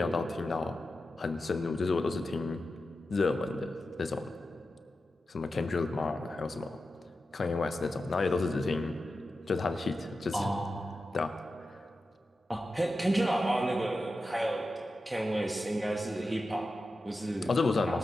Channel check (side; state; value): both; normal; correlation 0.91